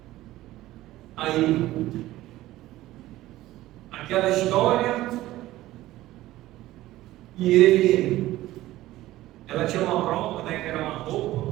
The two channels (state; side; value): quieter; left; 16.0 dB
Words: aí aquela história e ela tinha uma prova, né, que era uma